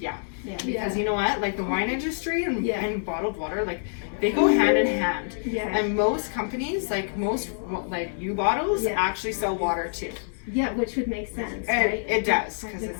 Yeah. Because you know what, like the wine industry and, Yeah. and bottled water, like they go hand in hand. Yeah. And most companies, like most like U-bottles, Yeah. actually sell water too. Yeah, which would make sense, And right? it does, because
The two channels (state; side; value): silent; right; digital silence